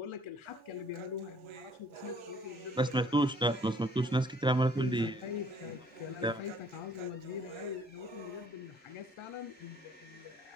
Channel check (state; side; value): normal; both; correlation 0.60